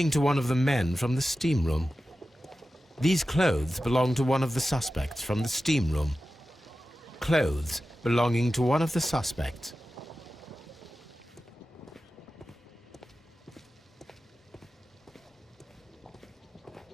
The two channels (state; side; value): normal; both; correlation 0.94